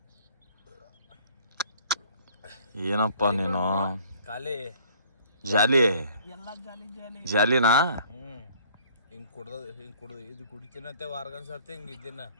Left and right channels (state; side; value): inverted; both; correlation -0.56